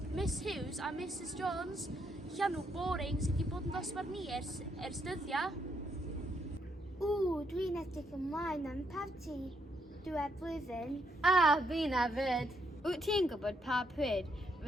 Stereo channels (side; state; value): both; normal; correlation 0.76